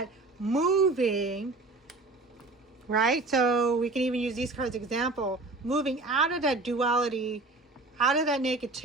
moving, right? So we can even use these cards as example, moving out of that duality, out of that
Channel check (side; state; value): left; quieter; 3.3 dB